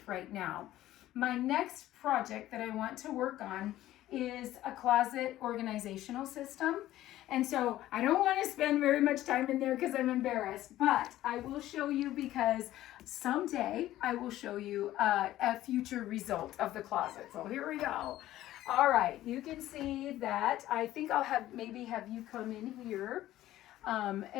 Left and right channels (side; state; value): right; quieter; 14.4 dB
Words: right now. My next project that I want to work on is a closet organizational system. And so I don't want to spend very much time in there because I'm embarrassed, but I will show you, because someday I will show you a future result of the closet. So here we go. All right, you can see that. I think I'll maybe have you come in here.